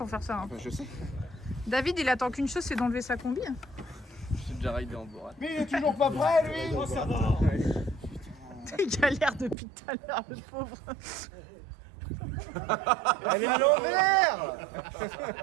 faire ça. Hein. Enfin, je sais. David il attend qu'une chose, c'est d'enlever sa combi. Hein. J'ai déjà ridé en bourrade. Mais il est toujours pas prêt lui. Oh, ça va. Il galère depuis tout à l'heure, le pauvre. Elle est à l'envers.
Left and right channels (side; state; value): left; drops out; at 9.6 s